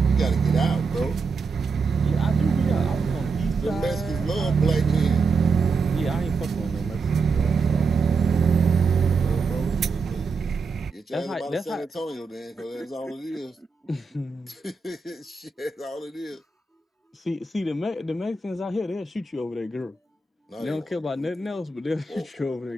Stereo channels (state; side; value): quieter; left; 4.4 dB